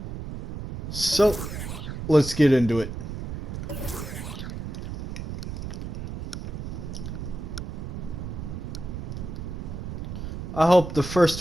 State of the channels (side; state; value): right; noise; rumble, 6 dB below the sound